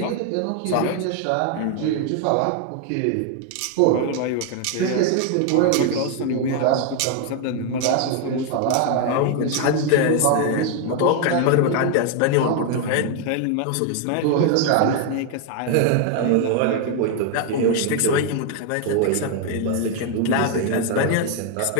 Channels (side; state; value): both; different; correlation 0.01